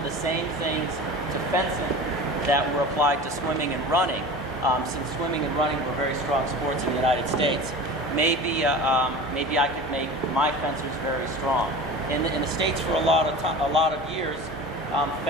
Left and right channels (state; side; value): normal; both; correlation 0.35